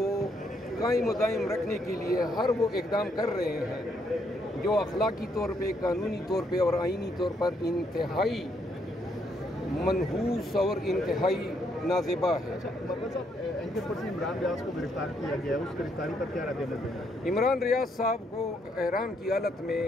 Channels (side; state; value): both; normal; correlation 0.73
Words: قائم و دائم رکھنے کے لیے ہر وہ اقدام کر رہے ہیں جو اخلاقی طور پہ، قانونی طور پہ اور آئینی طور پر انتہائی منحوس اور انتہائی نازیبا ہے۔ عمران ریاض کو گرفتار کیا گیا ہے، اس گرفتاری پر کیا رد عمل ہے؟ عمران ریاض صاحب کو احرام کی حالت میں